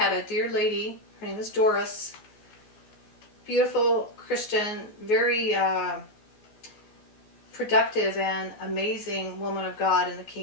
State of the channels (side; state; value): right; late; 14 ms